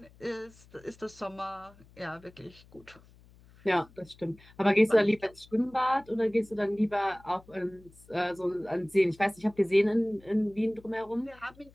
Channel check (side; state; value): left; noise; hum, 26 dB below the sound